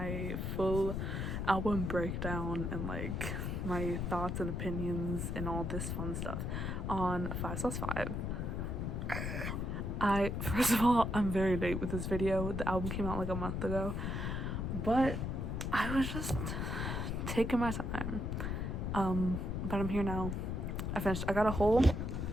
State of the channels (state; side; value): noise; left; rumble, 2 dB below the sound